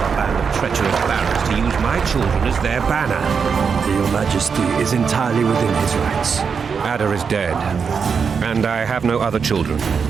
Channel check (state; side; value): quieter; left; 6.1 dB